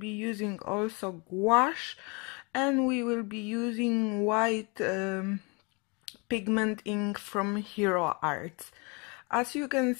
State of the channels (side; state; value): right; quieter; 30.7 dB